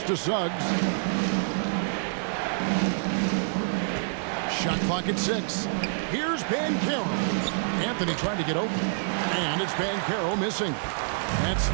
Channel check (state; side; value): silent; left; digital silence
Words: to Suggs. Shot clock at 6. Here's Banchero. Anthony trying to get open. And it's Banchero missing. Nets